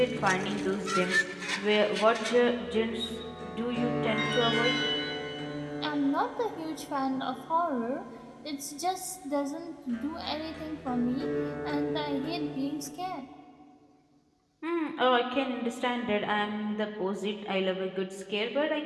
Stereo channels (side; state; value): both; identical; correlation 1.00